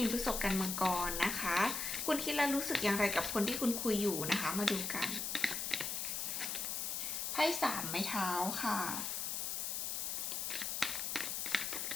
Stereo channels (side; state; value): left; noise; hiss, 2 dB below the sound